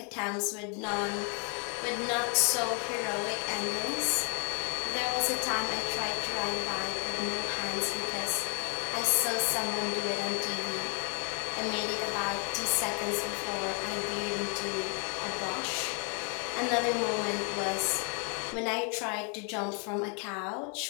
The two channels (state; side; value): quieter; right; 37.8 dB